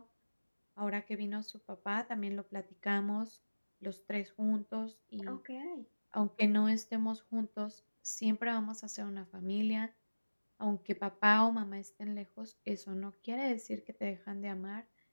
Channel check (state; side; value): inverted; both; correlation -1.00